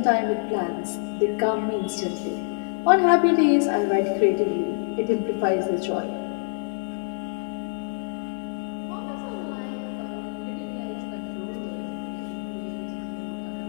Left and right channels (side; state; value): right; silent; digital silence